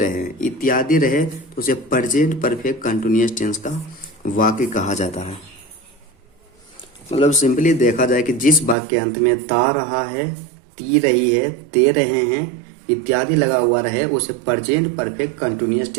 इत्यादि रहे, तो उसे प्रेजेंट परफेक्ट कंटिन्यूअस टेंस का वाक्य कहा जाता है। मतलब सिंपली देखा जाए कि जिस वाक्य के अंत में ता रहा है, ती रही है, ते रहे हैं इत्यादि लगा हुआ रहे, उसे प्रेजेंट परफेक्ट कंटिन्यूअस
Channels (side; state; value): left; drops out; at 8.8 s